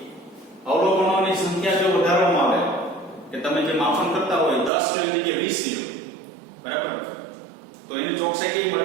અવલોકનોની સંખ્યા જો વધારવામાં આવે કે તમે જે માપન કરતા હોય 10 લેવાની જગ્યાએ 20 લ્યો બરાબર તો એની ચોકસાઈ કેવી મળે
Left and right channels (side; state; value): left; drops out; at 4.7 s